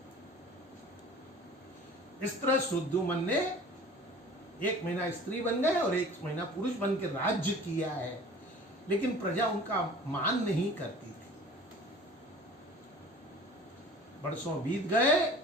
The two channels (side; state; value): both; normal; correlation 0.44